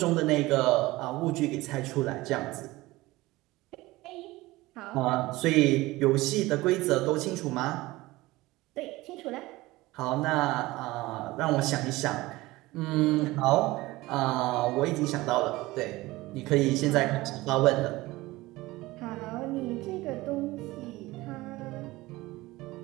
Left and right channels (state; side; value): quieter; left; 19.6 dB